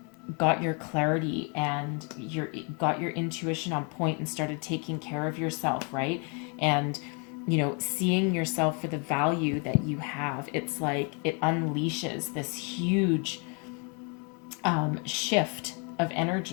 got your clarity and got your intuition on point and started taking care of yourself, right? And seeing yourself for the value that you have, it's like it unleashes this huge shift of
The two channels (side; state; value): right; quieter; 35.9 dB